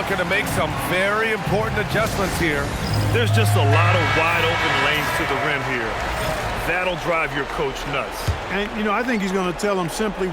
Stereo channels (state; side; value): identical; both; correlation 1.00